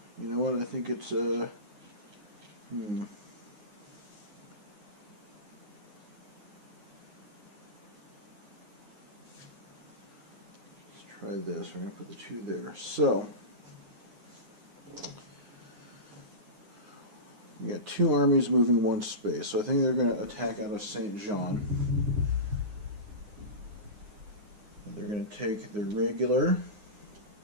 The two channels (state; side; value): late; left; 9.6 ms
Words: you know what, I think it's let's try this. We're going to put the 2 there. So, we got 2 armies moving 1 space. So I think they're going to attack out of Saint Jean. They're going to take their regular,